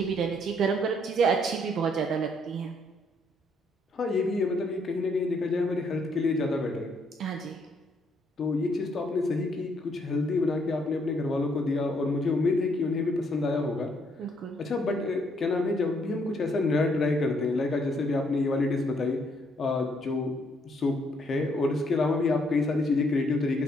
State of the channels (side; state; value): both; normal; correlation 0.70